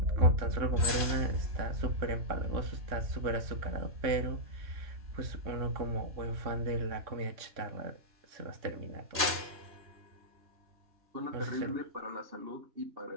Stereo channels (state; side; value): late; left; 3.6 ms